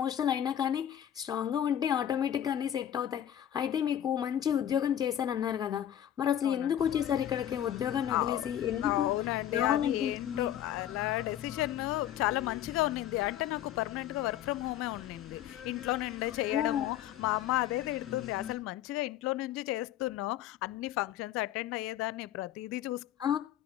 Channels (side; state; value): right; quieter; 11.1 dB